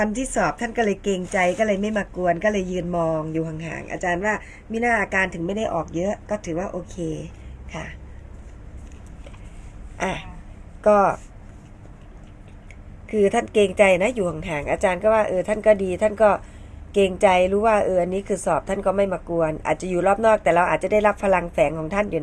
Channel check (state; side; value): identical; both; correlation 1.00